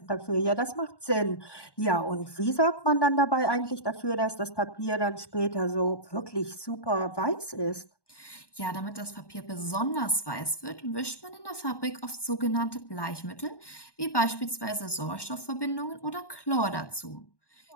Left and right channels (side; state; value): right; late; 1.1 ms